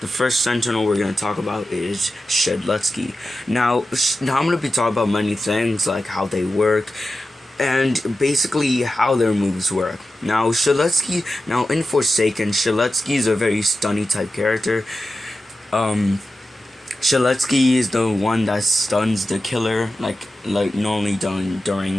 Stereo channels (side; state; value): both; normal; correlation 0.92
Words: first sentinel we're gonna talk about is Shedletsky. Now I'm gonna be talking about many things like how they work and basically how their moves work. Now in Forsaken, Shedletsky is a very stunny type character. Shedletsky is the one that stuns the killer, like normally done